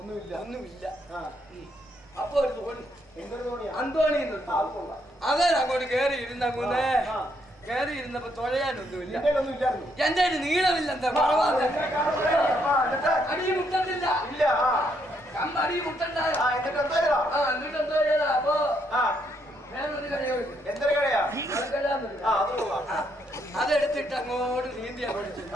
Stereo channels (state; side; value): normal; both; correlation 0.74